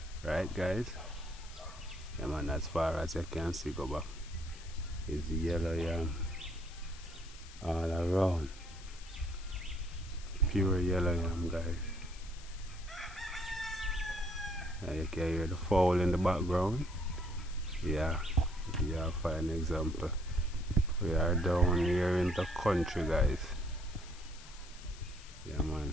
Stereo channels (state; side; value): noise; left; hiss, 18 dB below the sound